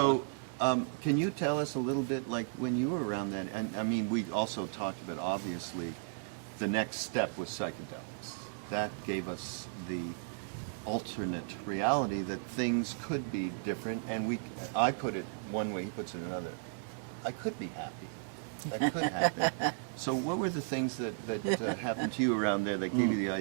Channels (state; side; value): silent; left; digital silence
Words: can you tell us a little bit, like when you were around then? And I mean, we also talked about obviously the next step was psychedelics. That gave us the alternate reality that things could be different. And I put it one way, he puts it another. I could be happy. That could happen. So, what were the things that happened to you around there that gave you the